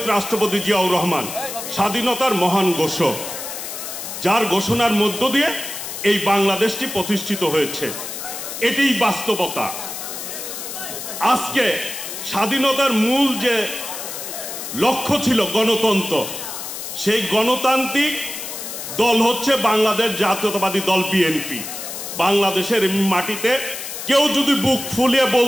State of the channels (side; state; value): left; noise; hiss, 8 dB below the sound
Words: রাষ্ট্রপতি জিয়াউর রহমান স্বাধীনতার মহান ঘোষক, যার ঘোষণার মধ্য দিয়ে এই বাংলাদেশটি প্রতিষ্ঠিত হয়েছে। এটিই বাস্তবতা। আজকে স্বাধীনতার মূল যে লক্ষ্য ছিল গণতন্ত্র, সেই গণতান্ত্রিক দল হচ্ছে বাংলাদেশ জাতীয়তাবাদী দল বিএনপি। বাংলাদেশের মাটিতে কেউ যদি বুক ফুলিয়ে